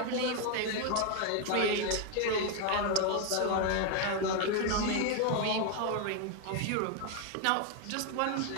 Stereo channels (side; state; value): both; different; correlation 0.01